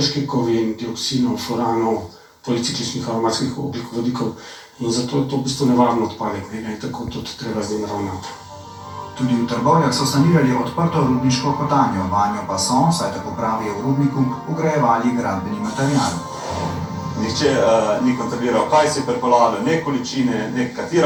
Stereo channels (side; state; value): both; identical; correlation 1.00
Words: kovin, dioksinov, furanov, policikličnih aromatskih ogljikovodikov in zato je to v bistvu nevaren odpadek, in tako tudi treba z njim ravnati. Tudi v Trbovljah so sanirali odprto rudniško kotanjo, vanjo pa so, saj tako pravijo v rudniku, vgrajevali gradbeni material. Nihče ni kontroliral, kaj se je pripeljalo, ne količine, ne